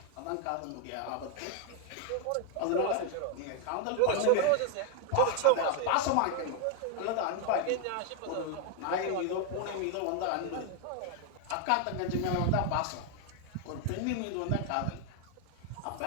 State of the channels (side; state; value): both; different; correlation 0.00